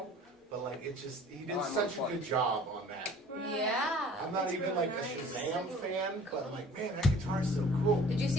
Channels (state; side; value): normal; both; correlation 0.49